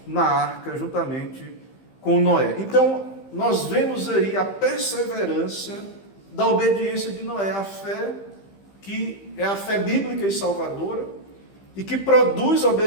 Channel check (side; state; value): right; late; 15 ms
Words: na arca juntamente com Noé. Então, nós vemos aí a perseverança da obediência de Noé, a fé que é a fé bíblica e salvadora, e que produz